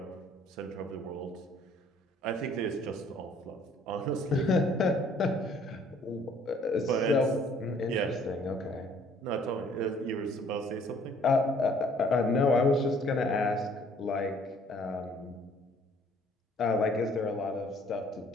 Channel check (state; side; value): normal; both; correlation 0.59